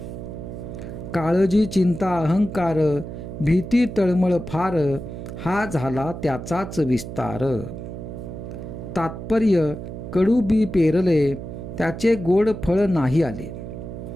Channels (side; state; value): right; noise; hum, 9 dB below the sound